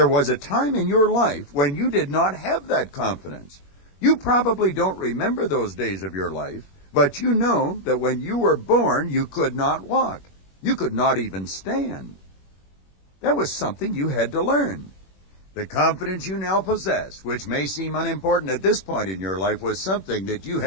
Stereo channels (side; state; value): right; late; 21 ms